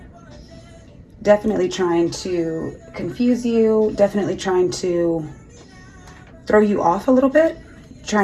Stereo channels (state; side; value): identical; both; correlation 1.00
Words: Definitely trying to confuse you, definitely trying to throw you off a little bit,